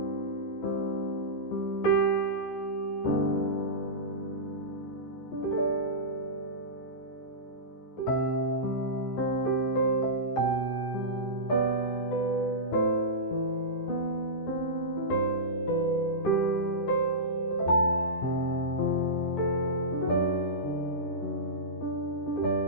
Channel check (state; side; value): late; right; 14 ms